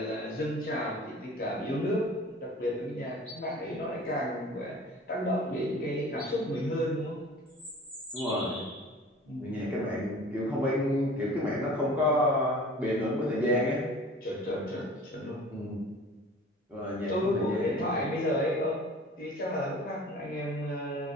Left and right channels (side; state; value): both; normal; correlation 0.43